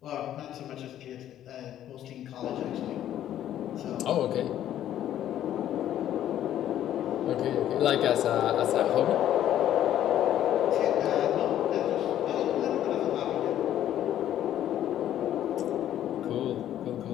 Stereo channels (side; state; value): right; quieter; 11.6 dB